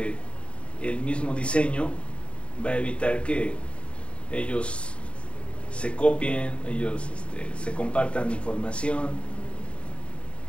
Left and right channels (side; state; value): right; late; 0.058 ms